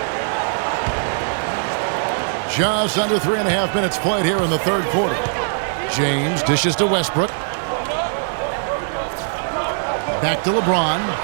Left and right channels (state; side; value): silent; left; 65 dB below the other